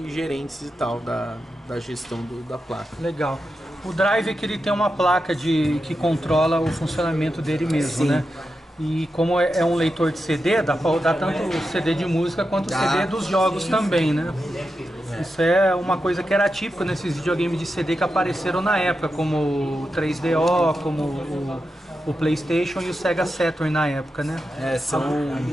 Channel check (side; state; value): both; normal; correlation 0.89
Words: e tal da gestão da placa. Legal. O drive é que ele tem uma placa que controla o funcionamento dele mesmo, né? E como é um leitor de CD, dá para rodar tanto o CD de música quanto o CD dos jogos também, né? Isso é uma coisa que era típica nesses videogames de CD que apareceram na época, como o 3DO, como o PlayStation e o Sega Saturn na época, né? São